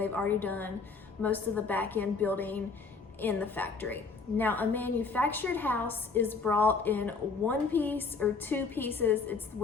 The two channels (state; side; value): quieter; right; 4.5 dB